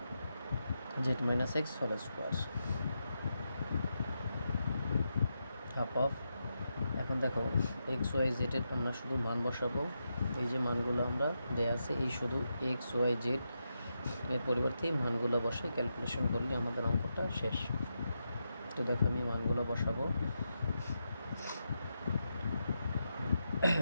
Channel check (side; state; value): both; inverted; correlation -0.86